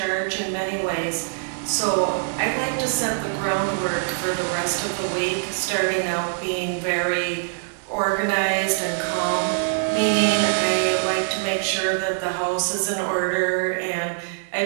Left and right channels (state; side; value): silent; left; digital silence